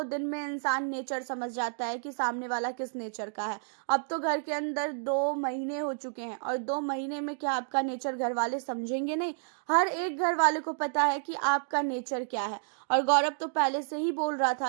दिन में इंसान नेचर समझ जाता है कि सामने वाला किस नेचर का है। अब तो घर के अंदर 2 महीने हो चुके हैं और 2 महीने में क्या आपका नेचर घर वाले समझेंगे नहीं? हर एक घर वाले को पता है कि आपका नेचर क्या है। और गौरव तो पहले से ही बोल रहा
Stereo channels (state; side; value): silent; left; digital silence